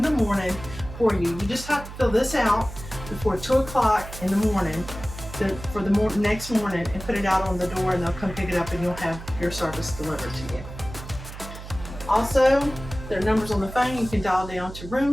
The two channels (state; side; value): noise; right; hum, 12 dB below the sound